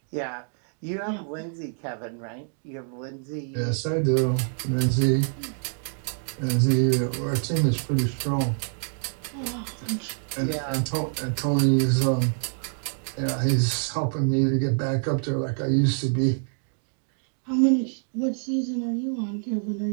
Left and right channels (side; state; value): left; silent; 61 dB below the other